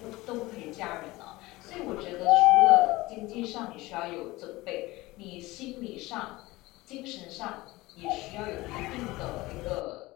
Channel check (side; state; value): right; quieter; 20.2 dB